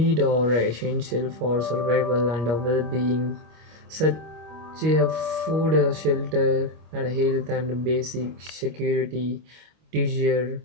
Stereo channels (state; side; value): late; left; 25 ms